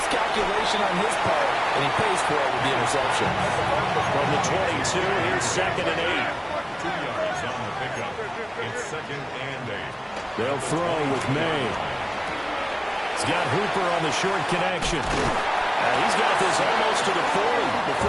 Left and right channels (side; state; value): both; identical; correlation 1.00